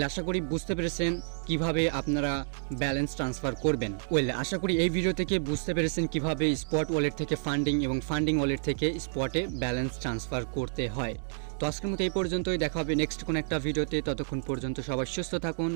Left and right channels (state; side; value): silent; left; digital silence